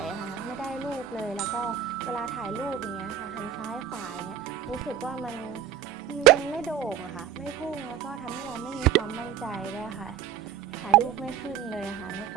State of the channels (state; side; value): quieter; left; 9.7 dB